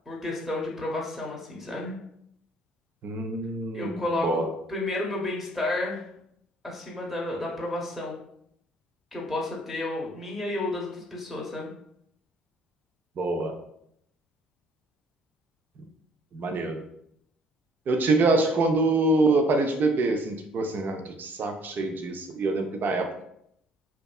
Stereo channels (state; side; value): normal; both; correlation 0.60